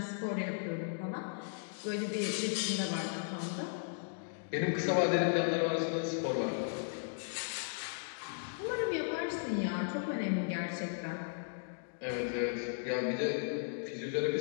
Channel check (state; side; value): silent; right; digital silence